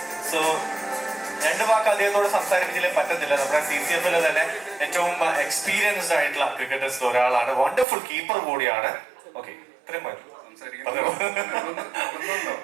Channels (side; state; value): left; drops out; at 7.9 s